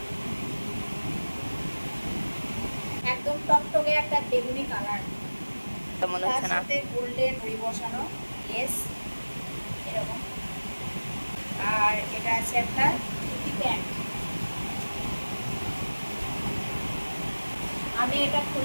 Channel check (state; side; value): inverted; both; correlation -1.00